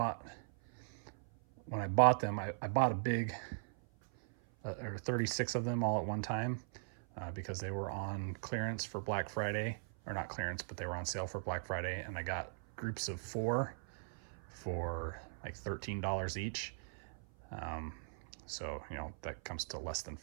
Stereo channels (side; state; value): left; silent; 51 dB below the other